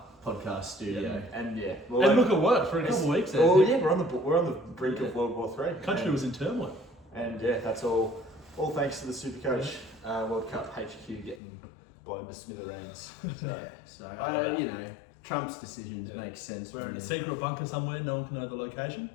podcast studio. And And look, it worked for a couple of weeks there. Oh yeah, we're on the brink of World War III. The country was in turmoil. And yeah, that's all thanks to the Supercoach World Cup HQ getting blown to smithereens. So Trump's decisions make sense. We're in a secret bunker somewhere, no one can know the location.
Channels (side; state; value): right; drops out; at 11.4 s